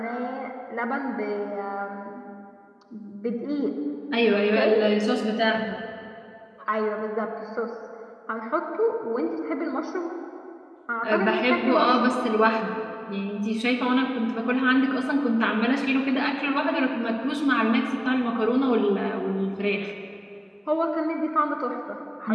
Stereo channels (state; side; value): identical; both; correlation 1.00